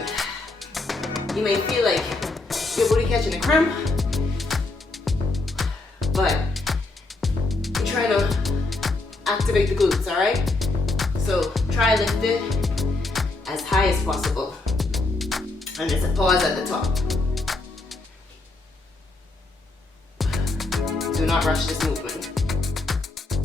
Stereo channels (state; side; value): quieter; right; 3.1 dB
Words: you may feel like your booty catching a cramp, but you're trying to activate the glutes, all right? So try lift it as high as possible, and there's a pause at the top. Do not rush this movement.